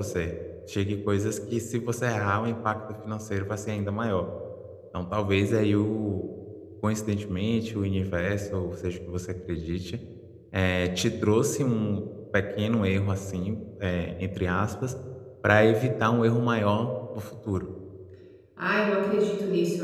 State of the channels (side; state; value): both; identical; correlation 1.00